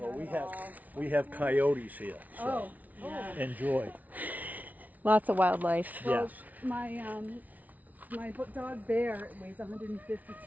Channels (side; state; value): left; late; 0.075 ms